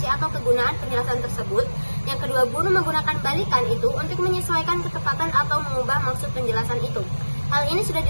atau kegunaan penjelasan tersebut. Yang kedua, guru menggunakan balikan itu untuk menyesuaikan ketepatan atau mengubah maksud penjelasan itu. Hal ini sudah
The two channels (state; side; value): inverted; both; correlation -1.00